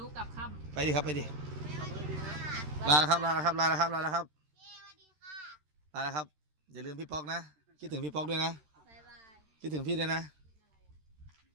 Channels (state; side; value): late; left; 13 ms